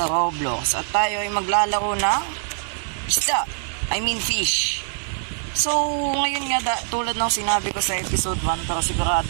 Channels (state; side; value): silent; left; digital silence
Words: Roblox at tayo ay maglalaro ng isda. I mean fish. So ngayon nga tulad ng sinabi ko sa episode 1, pero